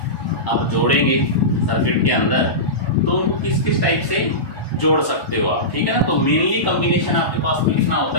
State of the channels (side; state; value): right; late; 1.1 ms